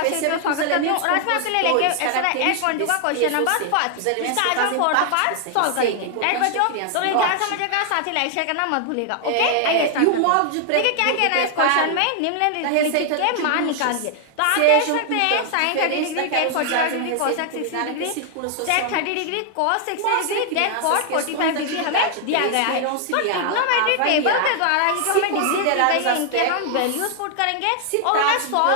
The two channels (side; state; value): both; different; correlation 0.00